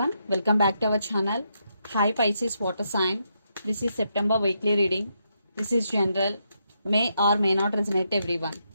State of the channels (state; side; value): inverted; both; correlation -0.80